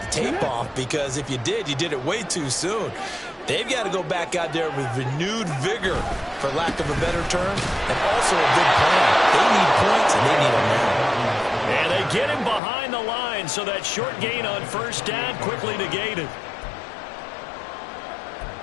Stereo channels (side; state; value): right; drops out; at 12.6 s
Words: the tape off, because if you did it way too soon. They've got to go back out there with renewed vigor, for lack of a better term, and also a big plan. They need points, and they need them now. And they get him behind the line, so that short gain on first down quickly negated.